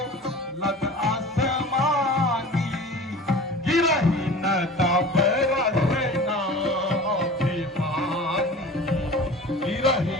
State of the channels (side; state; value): both; normal; correlation 0.39